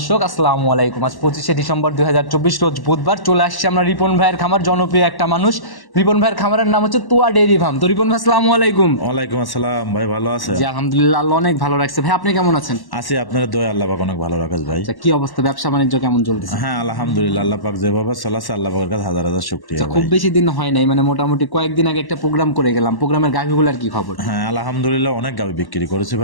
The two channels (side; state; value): right; late; 1.1 ms